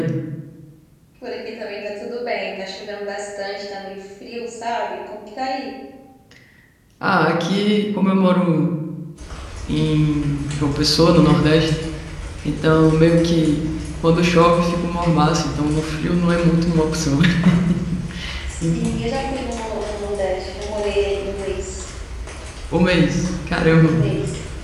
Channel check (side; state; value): both; identical; correlation 1.00